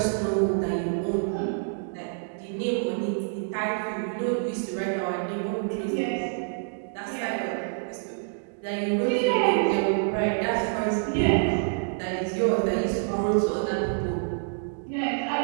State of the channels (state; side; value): silent; left; digital silence